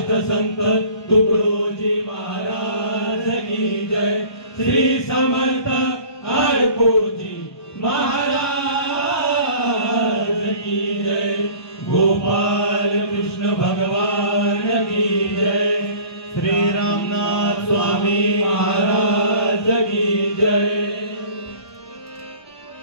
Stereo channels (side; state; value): right; late; 1.2 ms